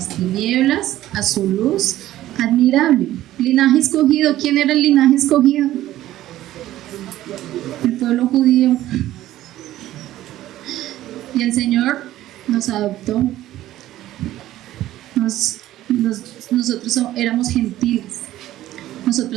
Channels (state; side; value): quieter; left; 14.2 dB